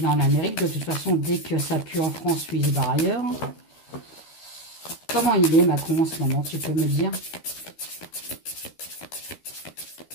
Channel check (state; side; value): late; right; 13 ms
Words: est en Amérique. De toute façon, dès que ça pue en France, lui, il se barre ailleurs. Comment il est, Macron, en ce moment? Tu peux me dire?